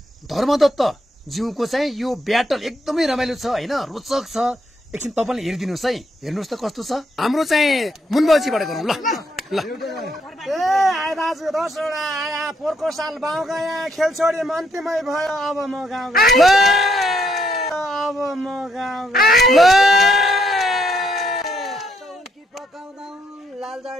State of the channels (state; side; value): normal; both; correlation 0.74